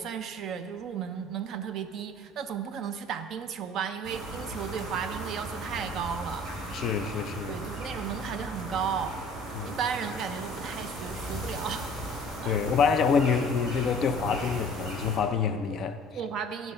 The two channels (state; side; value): normal; both; correlation 0.49